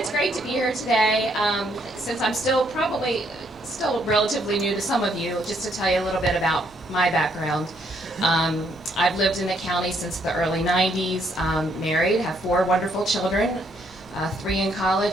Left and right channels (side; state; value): both; normal; correlation 0.71